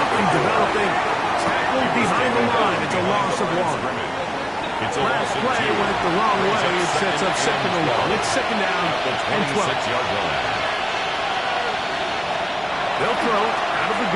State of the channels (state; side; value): identical; both; correlation 1.00